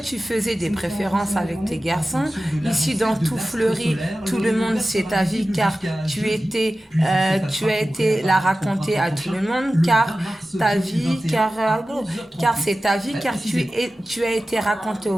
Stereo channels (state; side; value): normal; both; correlation 0.95